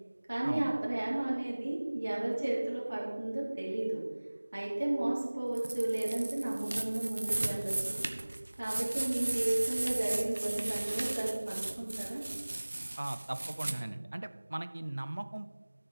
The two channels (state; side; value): inverted; both; correlation -1.00